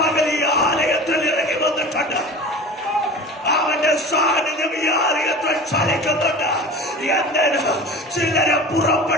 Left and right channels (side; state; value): both; normal; correlation 0.36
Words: ഈ ആലയത്തിൽ ഇറങ്ങി വന്നിട്ടുണ്ട്. അവന്റെ സാന്നിധ്യം ഈ ആലയത്തിൽ ചലിക്കുന്നുണ്ട്. എന്തിന്? ചിലരെ